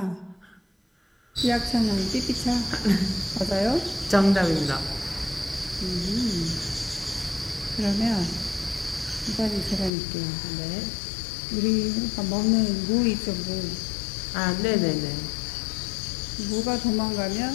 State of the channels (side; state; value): right; drops out; at 9.9 s